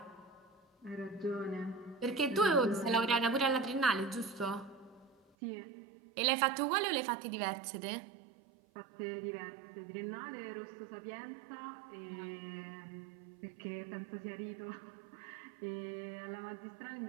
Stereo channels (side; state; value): left; drops out; at 5.2 s